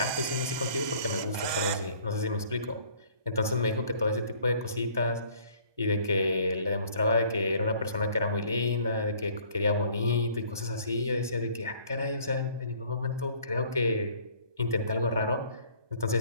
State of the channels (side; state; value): left; late; 1.2 ms